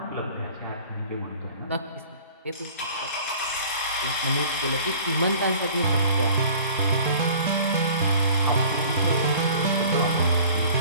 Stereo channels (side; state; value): both; inverted; correlation -0.48